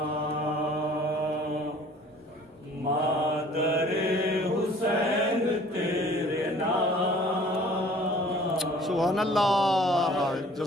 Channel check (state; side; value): normal; both; correlation 0.51